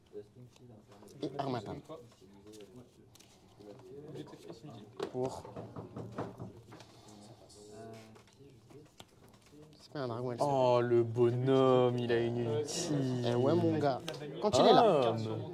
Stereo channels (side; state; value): both; identical; correlation 1.00